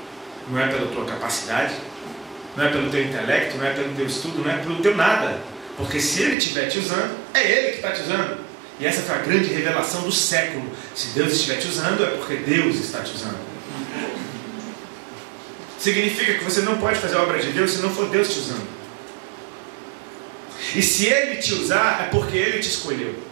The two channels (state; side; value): drops out; left; at 6.4 s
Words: não é pela tua capacidade, não é pelo teu intelecto, não é pelo teu estudo, não é pelo teu nada. Porque se Ele estiver te usando, é Ele que está te usando. E essa foi a grande revelação do século. Se Deus estiver te usando, é porque Deus está te usando. Significa que você não pode fazer a obra de Deus se não for Deus te usando. E se Ele te usar, é porque Ele te escolheu.